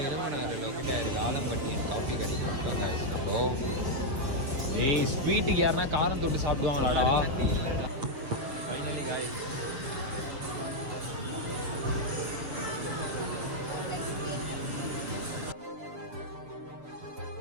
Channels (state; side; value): late; left; 6.6 ms